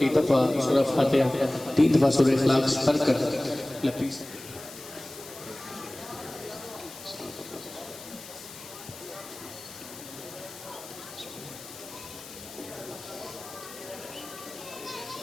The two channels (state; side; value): noise; left; hiss, 15 dB below the sound